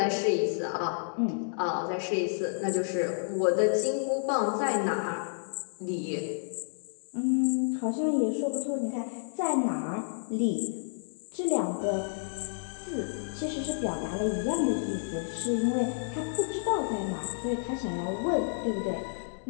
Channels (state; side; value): silent; right; digital silence